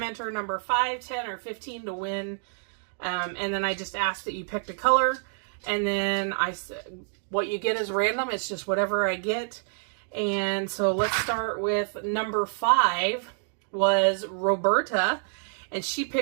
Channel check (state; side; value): silent; left; digital silence